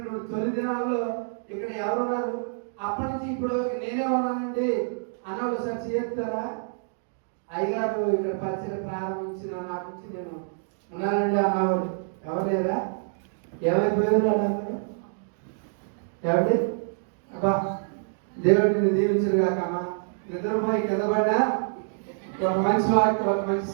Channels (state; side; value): silent; left; digital silence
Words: తొలి దినాల్లో ఇక్కడ ఎవరున్నారు? అప్పటి నుంచి ఇప్పుడు నేనే ఉన్నానండి అన్నవాళ్ళు సార్ చేస్తారా? అయ్యగారు ఇక్కడ పరిచర్య ప్రారంభించిన నాటి నుంచి నేను ఉన్నానండి అన్నవాడు ఎవరు లేరా? ఏమైపోయారు అన్నారు? ఏమండి అబ్బా దేవుడిని దీవించరు కాకమ్మా. నిద్రపోయి కింద పడ్డా ఒక మంచి వాక్యం, ఒక మంచి